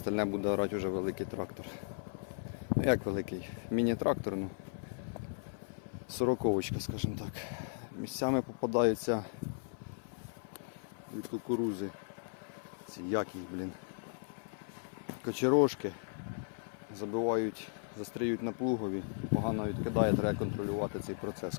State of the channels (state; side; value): silent; right; 54 dB below the other